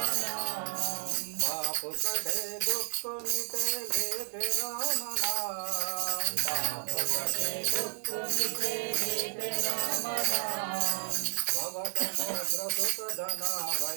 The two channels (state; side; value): silent; left; 57 dB below the other